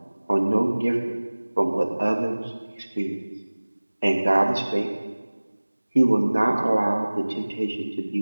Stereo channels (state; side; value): inverted; both; correlation -1.00